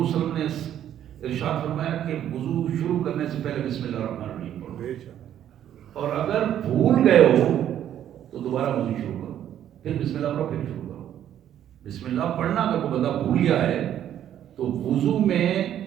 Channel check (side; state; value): left; quieter; 10.7 dB